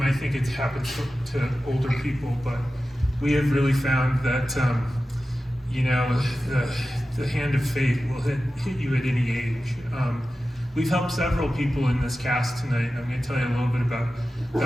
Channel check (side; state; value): both; normal; correlation 0.94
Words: think it happens to older people, but we have really found that, you know, the hand of fate will hit you at any age. We've helped several people in this cast tonight. I'm going to tell you a little bit